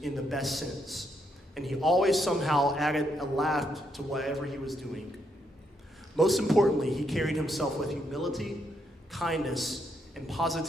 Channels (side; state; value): both; normal; correlation 0.77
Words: in the best sense, and he always somehow added a laugh to whatever he was doing. Most importantly, he carried himself with humility, kindness, and